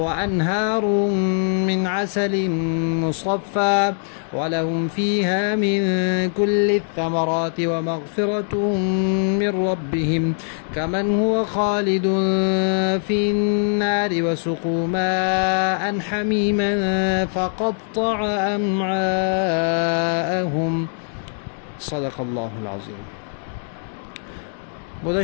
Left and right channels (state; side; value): silent; right; 64 dB below the other